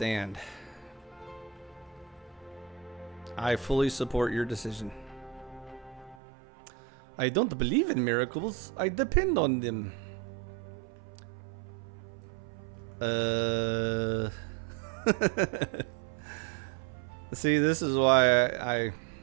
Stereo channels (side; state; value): left; drops out; at 6.2 s